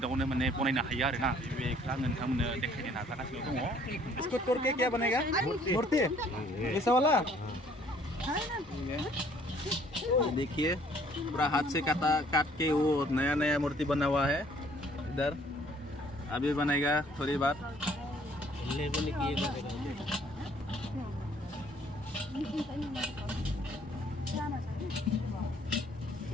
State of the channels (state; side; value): normal; both; correlation 0.60